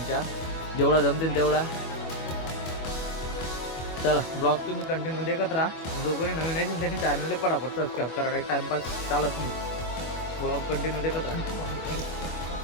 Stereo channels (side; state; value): right; late; 25 ms